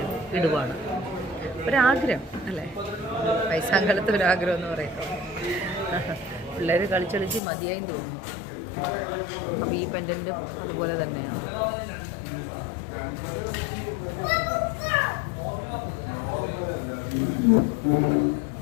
ഇടുവാണ്. ഒരാഗ്രഹം അല്ലേ, വയസ്സാങ്കാലത്ത് ഒരാഗ്രഹം എന്ന് പറയുമ്പോൾ. പിള്ളേർ കളിച്ചളിച്ച് മതിയായും തോന്നുന്നു. അപ്പോൾ ഈ പെൻഡൻറ്റും അതുപോലെ തന്നെയാണ്.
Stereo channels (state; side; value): drops out; right; at 7.4 s